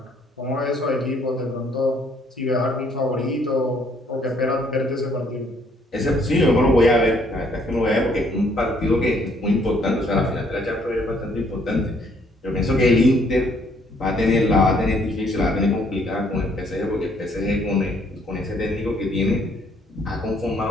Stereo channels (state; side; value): normal; both; correlation 0.66